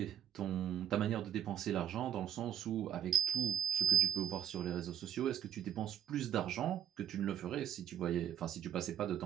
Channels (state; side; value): quieter; left; 9.9 dB